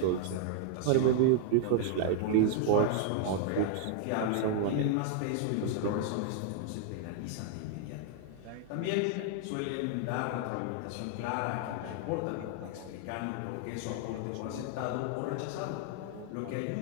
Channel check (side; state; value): both; different; correlation 0.00